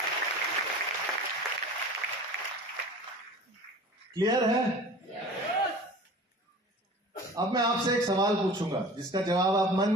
क्लियर है? अब मैं आपसे एक सवाल पूछूंगा जिसका जवाब आप मन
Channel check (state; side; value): normal; both; correlation 0.40